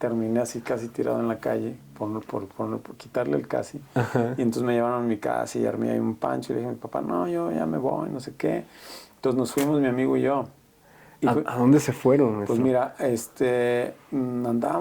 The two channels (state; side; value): identical; both; correlation 1.00